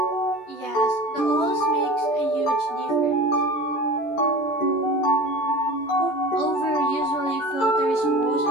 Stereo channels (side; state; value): right; late; 13 ms